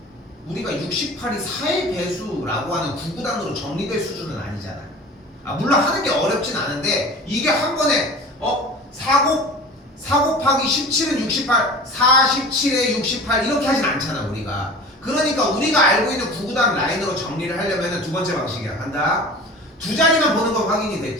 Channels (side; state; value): both; normal; correlation 0.38